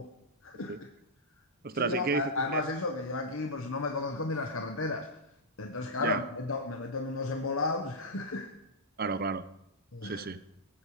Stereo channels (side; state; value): both; normal; correlation -0.08